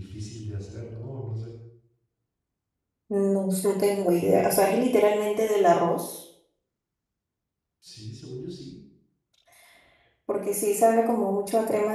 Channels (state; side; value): identical; both; correlation 1.00